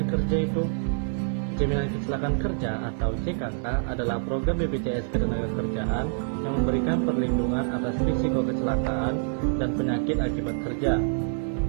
kerja itu? Jaminan kecelakaan kerja atau JKK adalah program BPJS Ketenagakerjaan yang memberikan perlindungan atas risiko kecelakaan dan penyakit akibat kerja.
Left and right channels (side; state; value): left; silent; digital silence